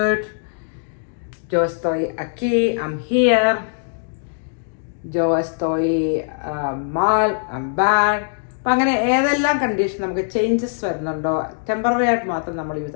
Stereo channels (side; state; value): right; silent; digital silence